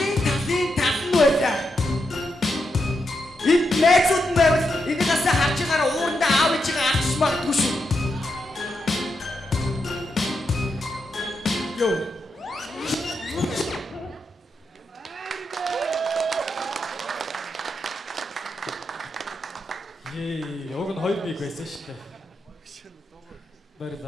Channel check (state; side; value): normal; both; correlation 0.84